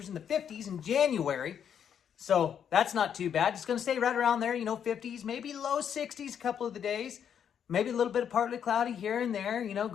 in the 50s in January, so that's not too bad. It's going to stay right around there, 50s, maybe low 60s a couple of the days, maybe a little bit of partly cloudy here and there,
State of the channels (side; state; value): right; quieter; 8.4 dB